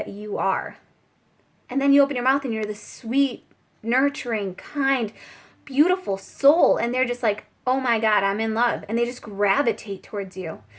you are. And then you open your mouth and you're the sweet, nurturing, kind, beautiful soul. And they're just like, oh my God, I'm in love. And they just gravitate towards you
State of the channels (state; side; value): identical; both; correlation 1.00